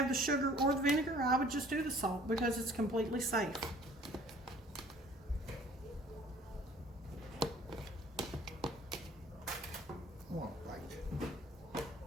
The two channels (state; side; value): normal; both; correlation 0.53